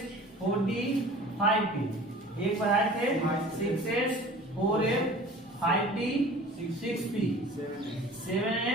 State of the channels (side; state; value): both; normal; correlation 0.43